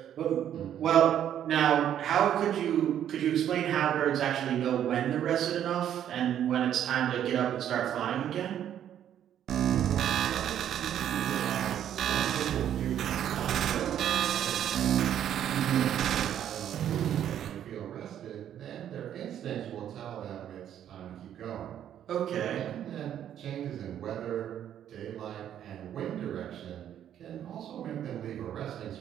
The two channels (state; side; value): quieter; left; 10.3 dB